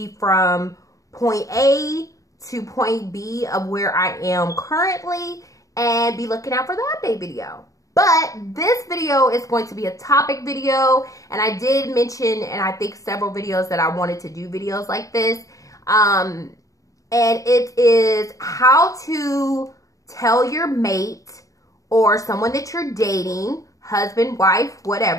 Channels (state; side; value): late; right; 0.16 ms